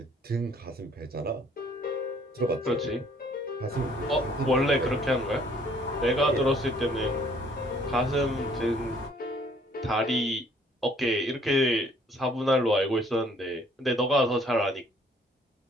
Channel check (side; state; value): both; normal; correlation 0.60